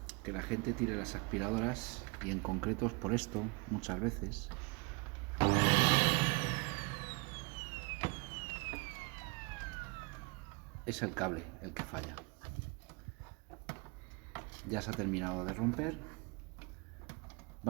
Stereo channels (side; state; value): left; quieter; 28.8 dB